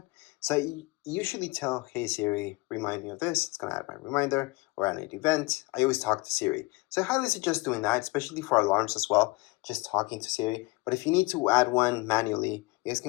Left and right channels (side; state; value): right; quieter; 24.1 dB